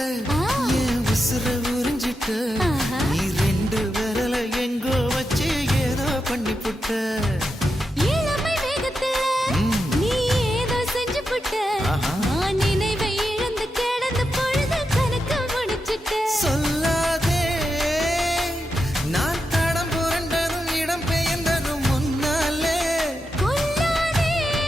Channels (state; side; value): normal; both; correlation 0.87